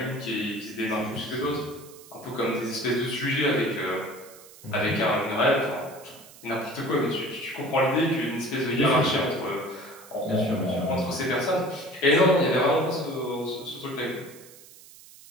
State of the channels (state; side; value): noise; right; hiss, 21 dB below the sound